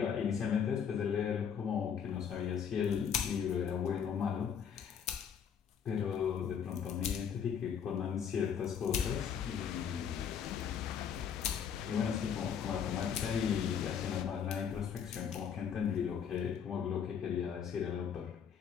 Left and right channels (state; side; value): quieter; right; 7.7 dB